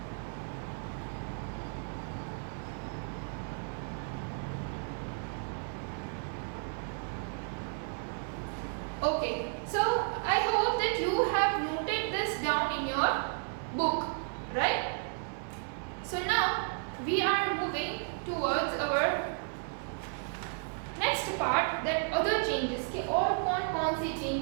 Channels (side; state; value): left; silent; 56 dB below the other